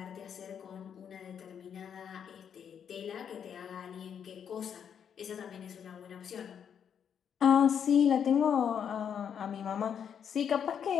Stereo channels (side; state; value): right; quieter; 8.0 dB